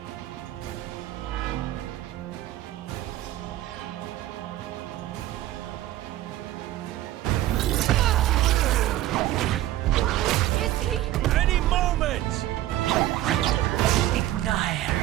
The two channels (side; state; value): left; quieter; 14.4 dB